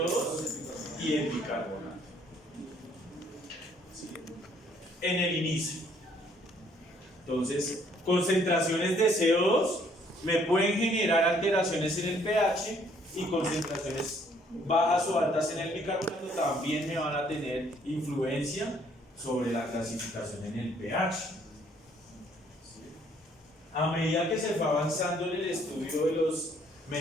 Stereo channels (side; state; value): both; normal; correlation 0.64